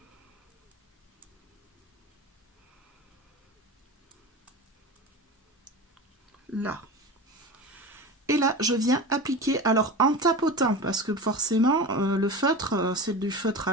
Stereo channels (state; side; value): normal; both; correlation 0.29